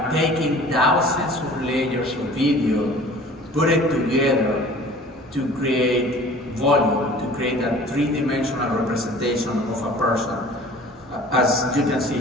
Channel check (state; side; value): normal; both; correlation 0.46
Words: taking thousands of layers of video, put it together to create volume, to create a three-dimensional representation of a person. As you can see